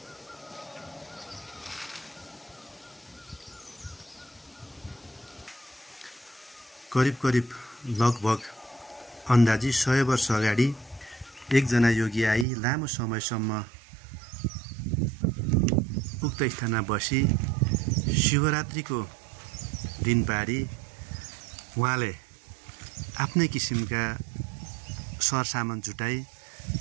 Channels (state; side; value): drops out; left; at 12.5 s